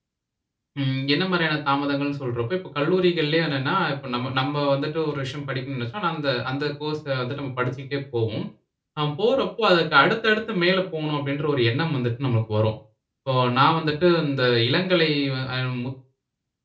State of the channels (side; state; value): both; identical; correlation 1.00